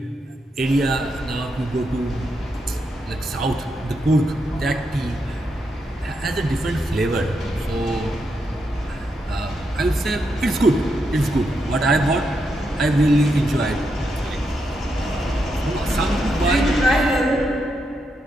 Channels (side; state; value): both; normal; correlation 0.82